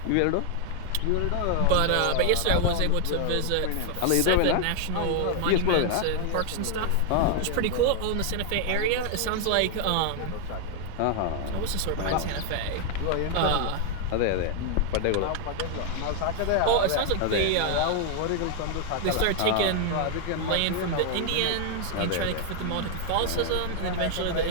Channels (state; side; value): different; both; correlation 0.00